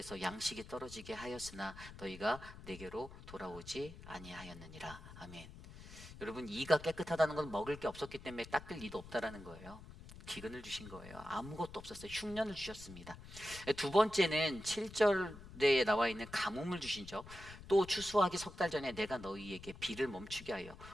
양식이 떨어지게 하였으나 너희가 내게로 돌아오지 아니하였느니라. 아멘. 여러분, 이가 깨끗하다는 건 먹을 게 없었기 때문에 닦을 이도 없다라는 거예요. 기근을 주신 거예요. 아무것도 없었어요. 흉년을 주셨습니다. 두 번째는 7절에 나와 있는 가뭄을 주시죠. 또 추수하기 3달 전에 내가 너희에게 비를 멈추게 하여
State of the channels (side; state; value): left; noise; rumble, 15 dB below the sound